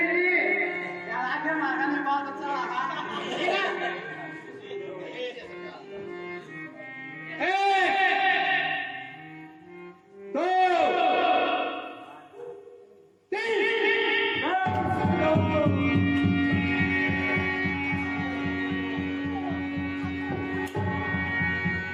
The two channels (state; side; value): identical; both; correlation 1.00